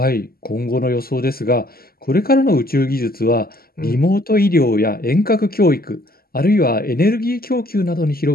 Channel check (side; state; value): right; late; 0.44 ms